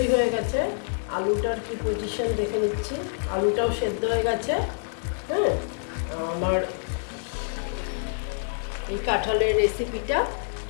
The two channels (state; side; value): silent; right; digital silence